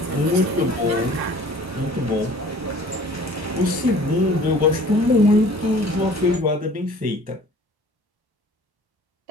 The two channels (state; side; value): late; left; 1.1 ms